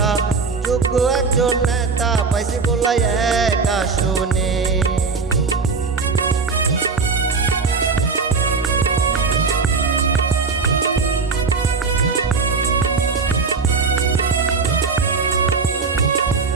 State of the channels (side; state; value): left; quieter; 4.8 dB